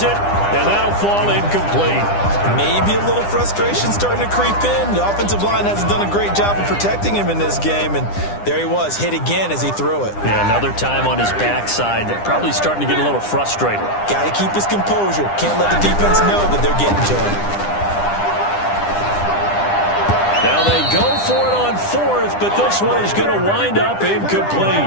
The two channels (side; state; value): right; late; 9.9 ms